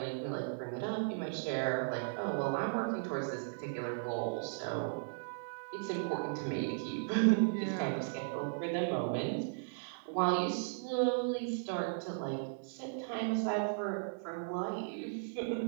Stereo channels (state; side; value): silent; left; 53 dB below the other